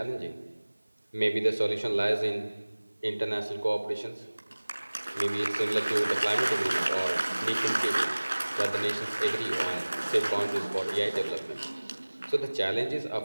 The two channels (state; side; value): inverted; both; correlation -1.00